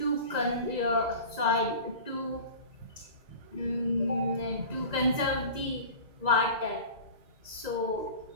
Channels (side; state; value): left; late; 1.9 ms